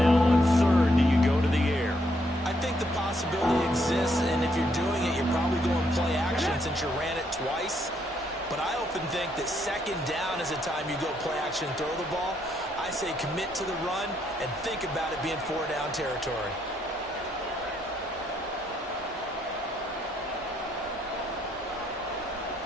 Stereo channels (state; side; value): normal; both; correlation 0.74